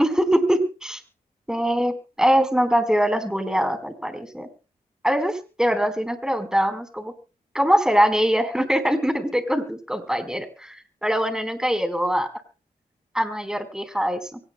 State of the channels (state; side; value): normal; both; correlation 0.93